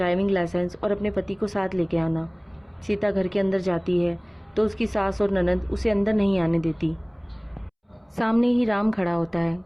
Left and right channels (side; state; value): both; identical; correlation 1.00